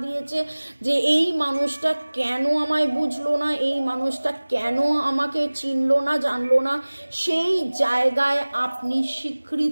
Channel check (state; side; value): inverted; both; correlation -1.00